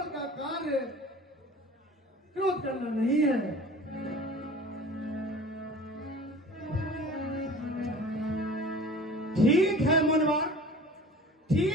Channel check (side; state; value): both; normal; correlation 0.42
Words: का कार्य क्रोध करना नहीं है। ठीक है मुनवर,